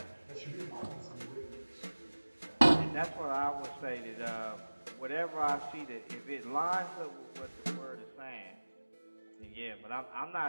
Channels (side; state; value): both; inverted; correlation -1.00